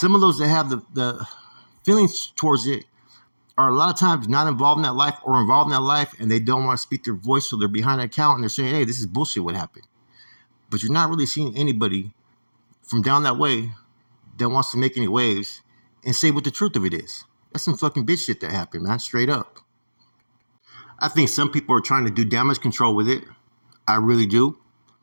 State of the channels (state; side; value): inverted; both; correlation -1.00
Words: of those that have the feelings towards it are a lot of times not involved in that life or involved in that life, and they don't want to speak their voice, so they're behind an account, and they're saying, hey, this is bullshit what happened. But you're not really seeing anybody from down that way that wants to make any waves and say what the truth of it is. That's some fucking bitch shit that happened, man, straight up. I think some people are trying to do damage control with it. I really do.